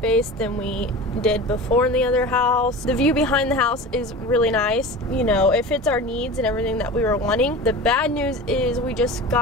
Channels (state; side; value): normal; both; correlation 0.33